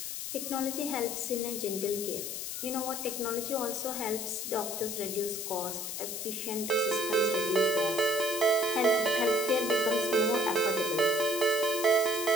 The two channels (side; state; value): left; noise; hiss, 5 dB below the sound